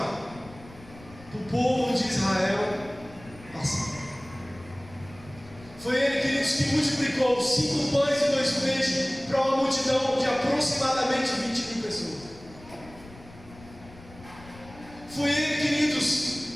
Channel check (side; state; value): left; noise; rumble, 20 dB below the sound